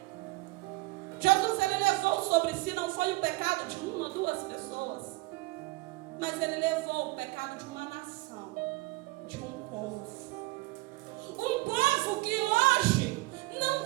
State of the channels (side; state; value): left; quieter; 22.5 dB